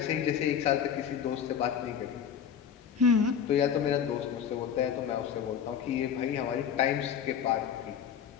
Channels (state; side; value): quieter; right; 8.1 dB